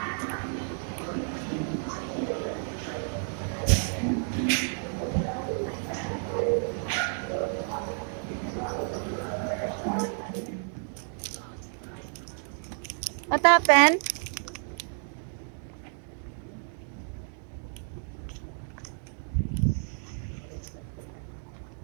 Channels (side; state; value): left; silent; 57 dB below the other